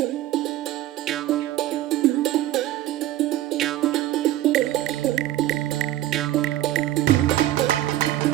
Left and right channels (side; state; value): left; quieter; 14.3 dB